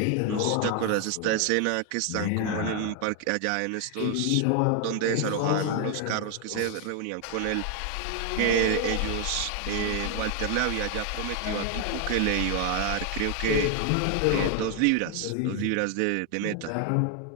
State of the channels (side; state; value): both; different; correlation 0.01